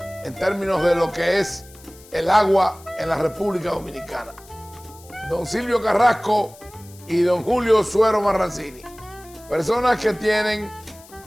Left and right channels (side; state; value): left; noise; hiss, 23 dB below the sound